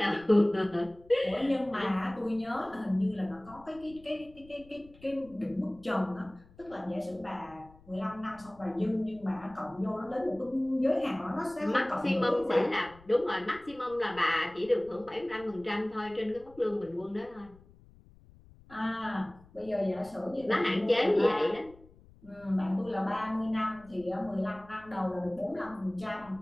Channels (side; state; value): left; noise; rumble, 24 dB below the sound